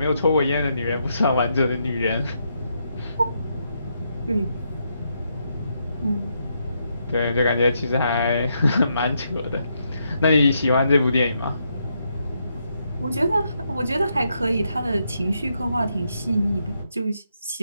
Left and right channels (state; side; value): inverted; both; correlation -0.79